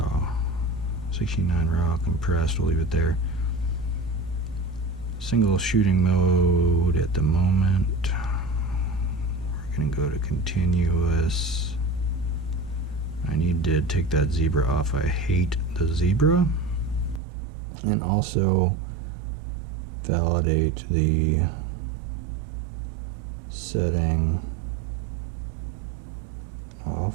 16.9 raw compressed. We'll leave it there. Single shooting mode at the moment. We're gonna go to continuous. I need to take that zebra off. I hate the zebra. And also validate the setting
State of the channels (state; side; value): drops out; left; at 17.2 s